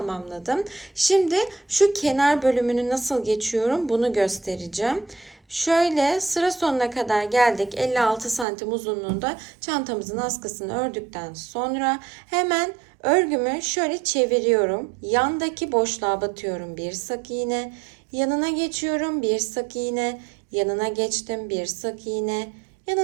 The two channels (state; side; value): drops out; left; at 8.5 s